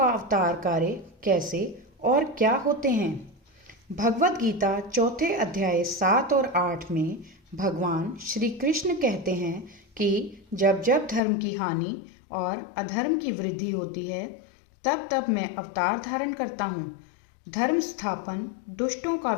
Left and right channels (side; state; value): right; drops out; at 11.2 s